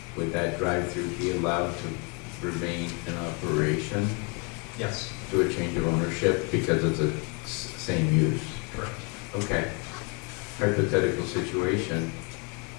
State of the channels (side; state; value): right; quieter; 31.7 dB